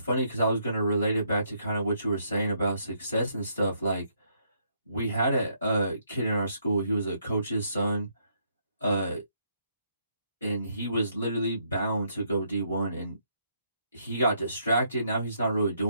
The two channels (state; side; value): inverted; both; correlation -0.72